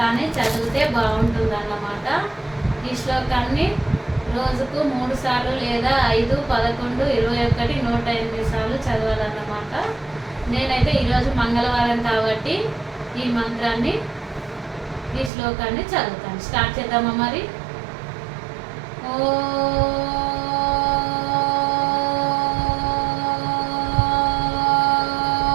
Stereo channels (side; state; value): left; drops out; at 15.3 s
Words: చదివితే బాగుంటుందన్నమాట. ఈ శ్లోకాన్ని రోజుకు 3 సార్లు లేదా 5, 11, 21, 108 సార్లు చదవాలన్నమాట. నేనైతే ఈరోజు మంగళవారం కాబట్టి ఈ మంత్రాన్ని, ఈ శ్లోకాన్ని చదువుతాను. స్టార్ట్ చేద్దామా మరి?